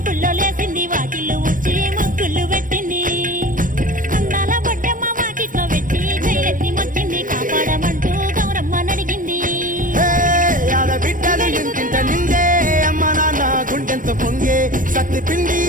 లేసింది వాకిళ్ళు ఊడ్చి ముగ్గులు పెట్టింది అందాల బొడ్డమ్మ వాకిట్లో పెట్టి జైలెత్తి మొచ్చింది కాపాడమంటూ గౌరమ్మ నడిగింది బిడ్డలు ఇంటింట నిందే అమ్మ నాన్న గుండెంతో పొంగే సత్తి పిండి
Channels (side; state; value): left; late; 0.39 ms